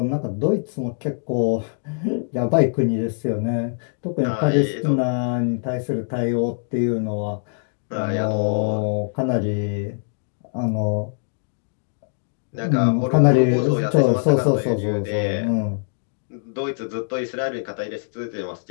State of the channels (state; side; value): silent; right; digital silence